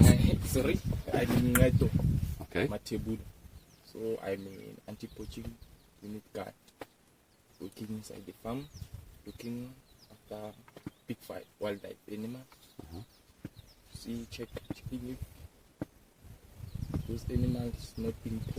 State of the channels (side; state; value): both; identical; correlation 1.00